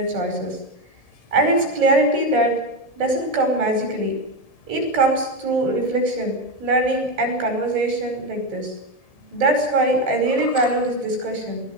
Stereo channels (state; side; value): late; right; 1.7 ms